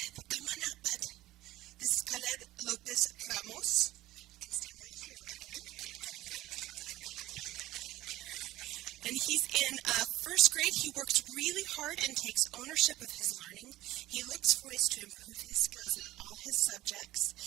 come on up, bud. This is Khaled Lopez Ramos. You can stand right here, okay? And he's in first grade. He works really hard and takes ownership of his learning. He looks for ways to improve his skills in all his subjects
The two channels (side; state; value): left; quieter; 16.4 dB